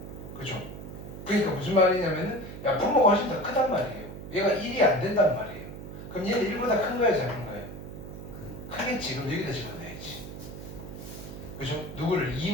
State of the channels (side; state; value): right; noise; hum, 11 dB below the sound